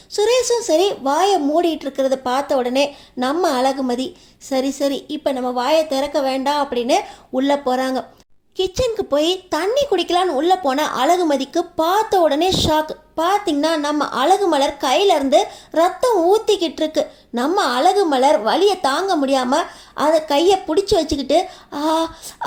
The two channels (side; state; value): both; identical; correlation 1.00